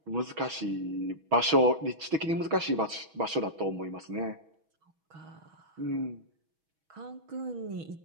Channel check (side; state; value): left; late; 6.2 ms